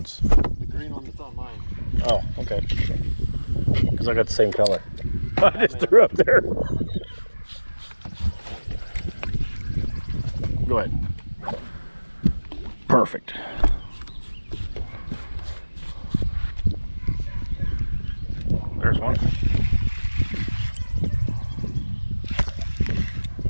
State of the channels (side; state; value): both; inverted; correlation -1.00